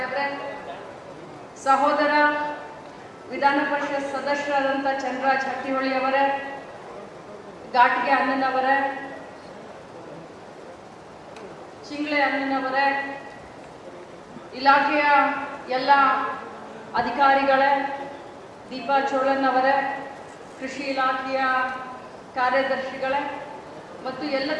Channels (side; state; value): both; identical; correlation 1.00